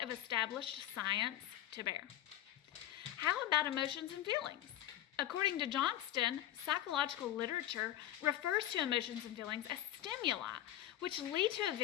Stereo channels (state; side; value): quieter; right; 12.8 dB